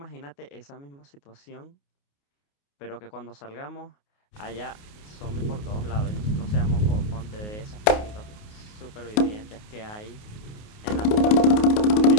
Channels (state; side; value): late; right; 29 ms